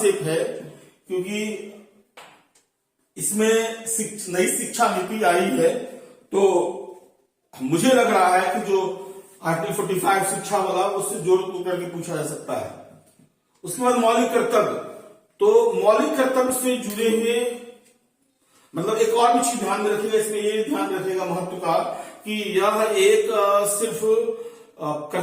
है, क्योंकि इसमें नई शिक्षा नीति आई है, तो मुझे लग रहा है कि जो आर्टिकल 45 शिक्षा वाला, उससे जोड़ करके पूछा जा सकता है। उसके बाद मौलिक कर्तव्य, तो मौलिक कर्तव्य से जुड़े हुए मतलब एक और भी चीज ध्यान में रखिएगा, इसमें ये ध्यान रखिएगा महत्व का, कि यह एक सिर्फ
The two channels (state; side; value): identical; both; correlation 1.00